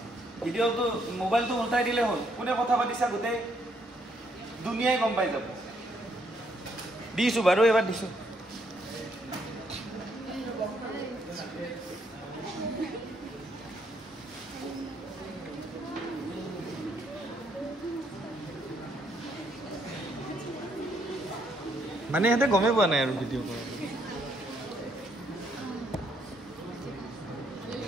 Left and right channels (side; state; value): both; normal; correlation 0.72